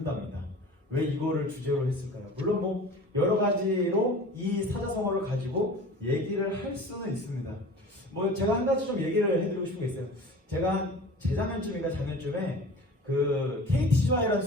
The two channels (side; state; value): both; normal; correlation 0.40